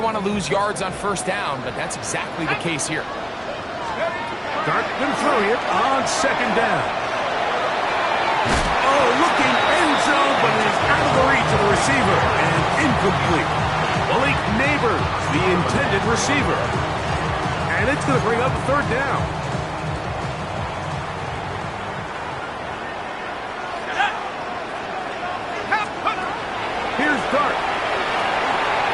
want to lose yards on first down, but that's exactly the case here. Dart going to throw here on second down. Oh, looking end zone, but it is out of the reach of the receiver and incomplete. Malik Neighbors, the intended receiver. And it's going to bring up a third down. Here's Dart.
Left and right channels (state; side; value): identical; both; correlation 1.00